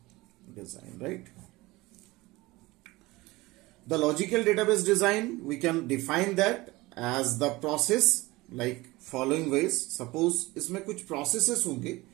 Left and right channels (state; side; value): quieter; left; 20.9 dB